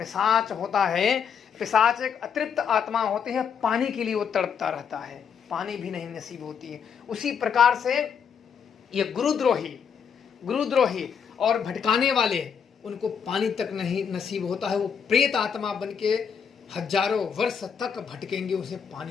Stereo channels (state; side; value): quieter; right; 7.1 dB